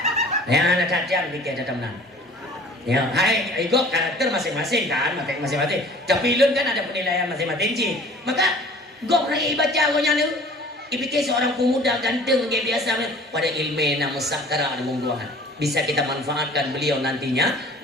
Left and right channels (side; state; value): both; normal; correlation 0.48